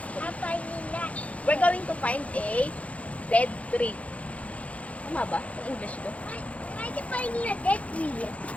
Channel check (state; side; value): late; right; 0.065 ms